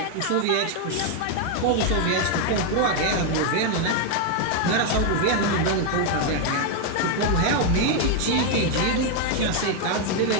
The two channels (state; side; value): different; both; correlation 0.01